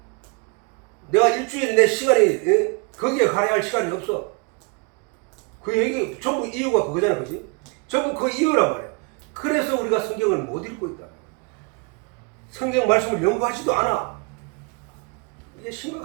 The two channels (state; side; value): quieter; left; 30.9 dB